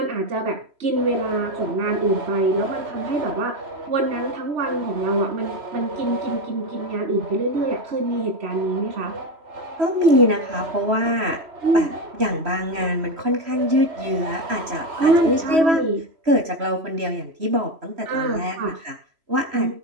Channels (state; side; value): late; left; 3.1 ms